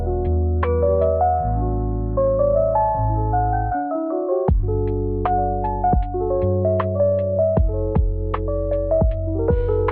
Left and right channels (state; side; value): identical; both; correlation 1.00